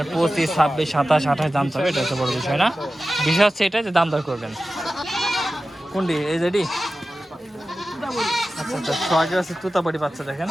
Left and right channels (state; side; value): normal; both; correlation 0.94